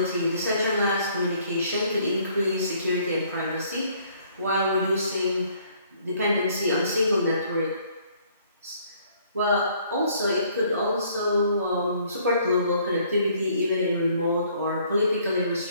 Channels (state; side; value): inverted; both; correlation -0.62